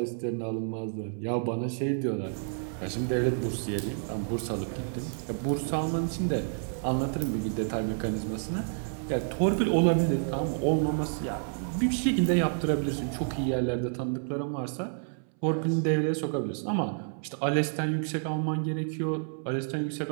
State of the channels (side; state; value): left; silent; 58 dB below the other